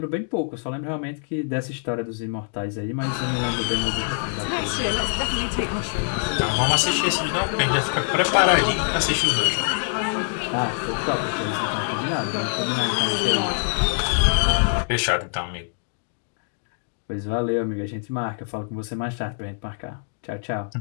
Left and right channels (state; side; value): silent; right; digital silence